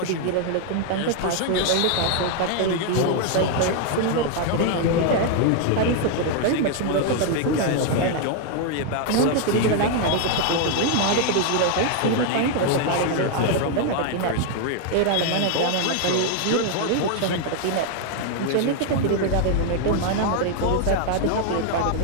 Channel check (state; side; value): different; both; correlation 0.00